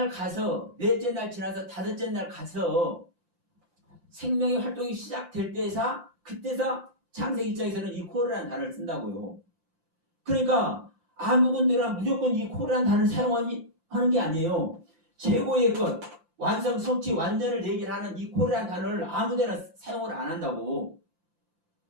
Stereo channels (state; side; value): late; left; 5.8 ms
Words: 가서, 넷째 날 지나서 다섯째 날 가서 생명의 활동이 시작될 그때서 창세기 입장에서는 이 콜이라는 단어를 쓴다고요. 그러니까 아무 군데나 무조건 이 콜이라는 단어를 사용하는 게 아니에요. 최고의 것, 완성, 성취, 완전을 얘기를 하는 이 콜이라는 단어를 아무데나 사용을 안 한다고.